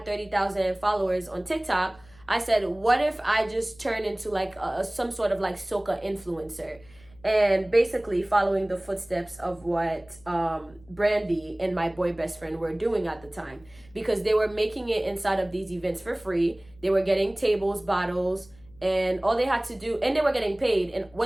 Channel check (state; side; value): noise; left; hum, 26 dB below the sound